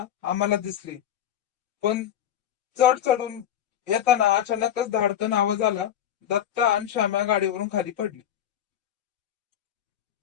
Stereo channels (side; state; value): right; quieter; 10.3 dB